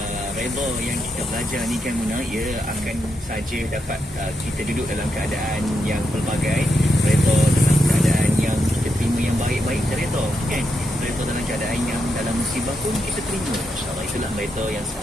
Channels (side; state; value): both; normal; correlation 0.82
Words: reda yang kita belajar ni kan Muna, ia akan saja dapat kita duduk dalam keadaan yang pelbagai, reda dalam keadaan yang kita terima yang baik-baik, reda kan, reda dalam keadaan yang dalam musibah pun kita terima. InsyaAllah itulah reda yang